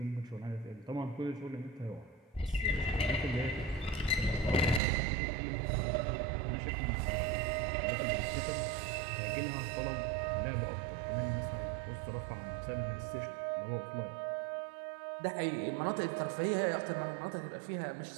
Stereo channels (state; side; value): drops out; left; at 4.8 s